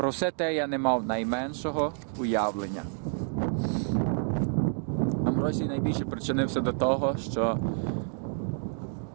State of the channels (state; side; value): silent; left; 59 dB below the other